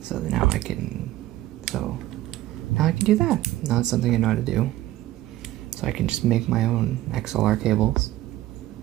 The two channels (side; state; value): left; quieter; 15.4 dB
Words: So now I can do that. Now it's something I know how to do. So I can just make my own XLR cables.